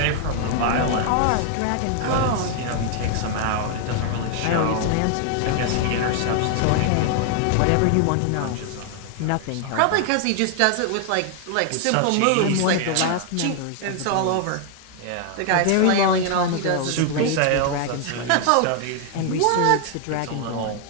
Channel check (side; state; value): both; different; correlation 0.00